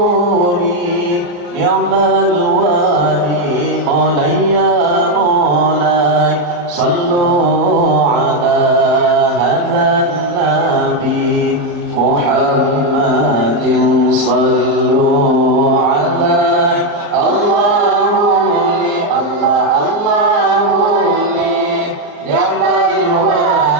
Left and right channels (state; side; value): late; left; 34 ms